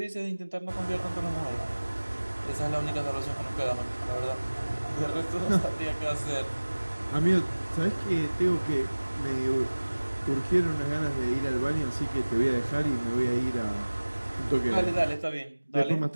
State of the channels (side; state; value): both; inverted; correlation -1.00